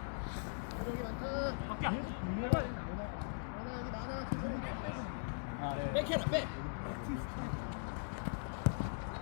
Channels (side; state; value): right; silent; digital silence